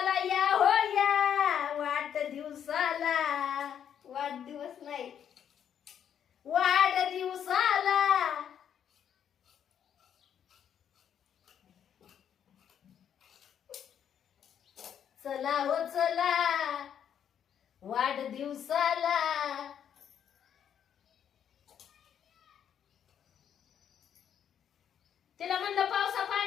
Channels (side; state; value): right; quieter; 8.9 dB